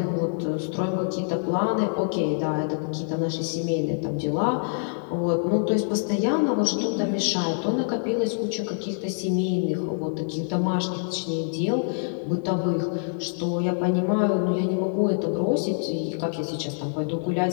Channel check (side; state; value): right; silent; digital silence